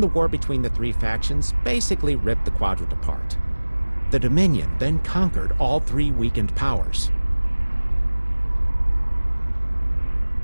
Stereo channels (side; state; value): both; inverted; correlation -1.00